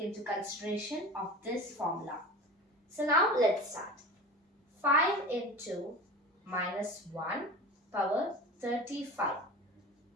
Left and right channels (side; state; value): both; normal; correlation 0.34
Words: consideration of this formula. So now let's start. 5 into minus 1 power 35.